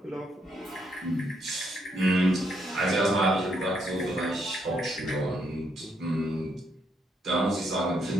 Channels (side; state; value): both; normal; correlation 0.75